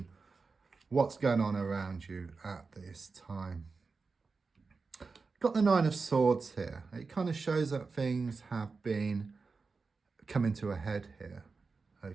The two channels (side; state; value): left; quieter; 4.4 dB